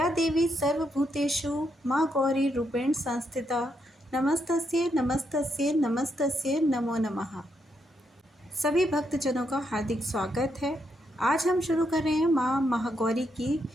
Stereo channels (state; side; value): normal; both; correlation 0.79